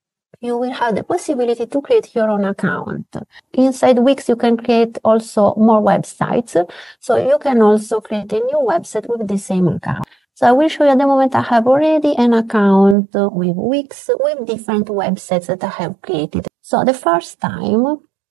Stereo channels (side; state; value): left; drops out; at 13.0 s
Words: you will have the possibility to create your own account. Inside Wix, you can create also more websites. So you can also create a new website with the same account. So I will show you at the moment I have already an account with Wix with different websites that I have created. So the first time